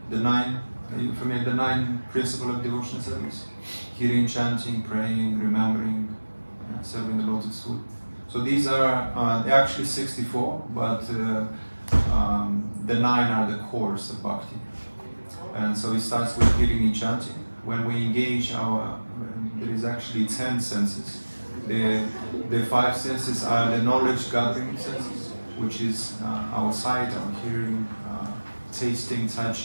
Are you familiar with the 9 principles of devotional service? Hearing, chanting, praying, remembering, serving the lotus food. So these are they're actually 64, but the 9 are the cores of bhakti. And so it starts with hearing and chanting. When we engage there is actually 10 senses. The 5 senses are the knowledge gathering senses, which is our sight, our hearing, tasting,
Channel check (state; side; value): inverted; both; correlation -1.00